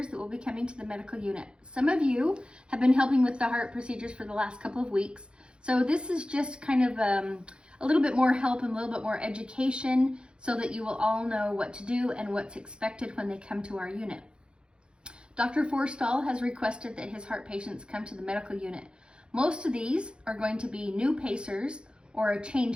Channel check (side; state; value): left; late; 0.053 ms